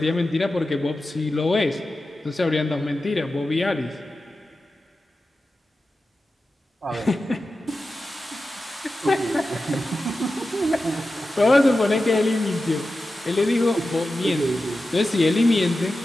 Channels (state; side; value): normal; both; correlation 0.93